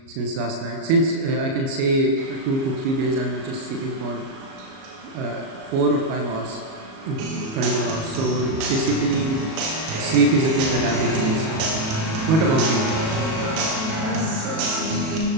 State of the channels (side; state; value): left; late; 37 ms